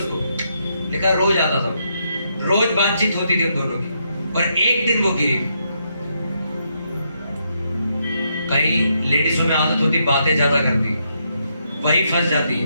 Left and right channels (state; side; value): inverted; both; correlation -0.78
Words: लिखा रोज आता था, रोज बातचीत होती थी उन दोनों की, और एक दिन वो गिरी। कई लेडीजों में आदत होती बातें ज्यादा करती, वही फंस जाती है।